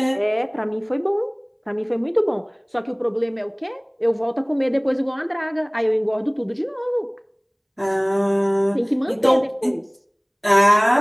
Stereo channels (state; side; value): identical; both; correlation 1.00